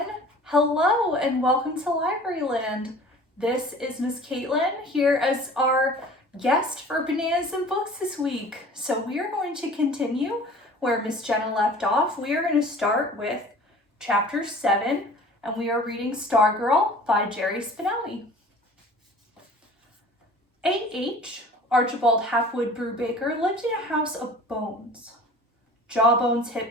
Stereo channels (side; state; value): both; normal; correlation 0.45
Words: Hello and welcome to Library Land. This is Miss Caitlin here as our guest for Bananas and Books this week. So we are going to continue where Miss Jenna left off. We are going to start with chapter 7, and we are reading Stargirl by Jerry Spinelli. A.H. Archibald Halfwood Brubaker lived in a house of bones. Jawbones,